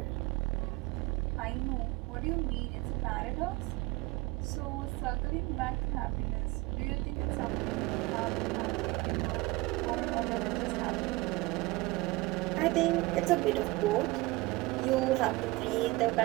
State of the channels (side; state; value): left; quieter; 21.5 dB